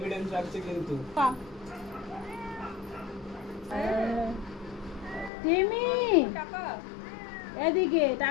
রাখছে কিন্তু। টিমি, এদিকে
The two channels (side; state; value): right; drops out; at 5.3 s